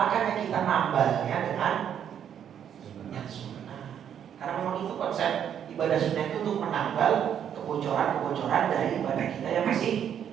kita nambahnya dengan yang sunnah. Karena memang itu konsep ibadah sunnah itu untuk menambal kebocoran-kebocoran dari ibadah kita yang masih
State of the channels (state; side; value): quieter; left; 9.0 dB